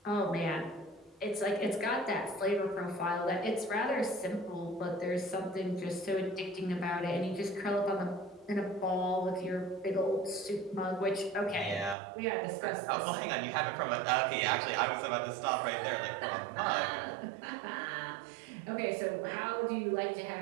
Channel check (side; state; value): left; drops out; at 12.0 s